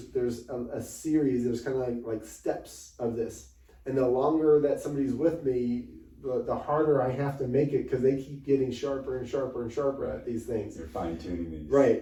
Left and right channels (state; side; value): identical; both; correlation 1.00